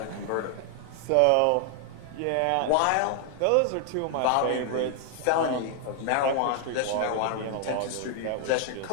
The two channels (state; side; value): different; both; correlation 0.00